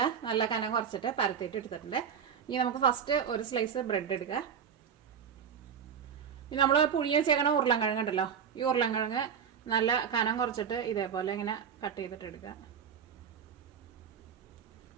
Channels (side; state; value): left; quieter; 7.6 dB